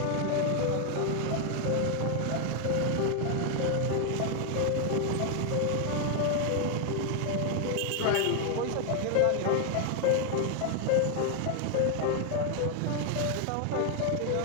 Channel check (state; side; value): different; both; correlation 0.00